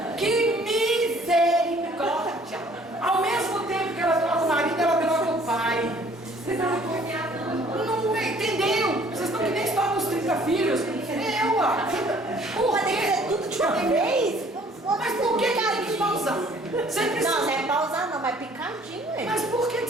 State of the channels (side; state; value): both; normal; correlation 0.57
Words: Que misericórdia. Ao mesmo tempo que ela troca o marido, ela troca o pai. Não entendeu? Vocês estão que nem história dos 30 filhos. Por quê? Tudo de uma vez? Mas por que tem que pausar? Você precisa... Não, não é pausar não, mas picadinho, hein? Mas por que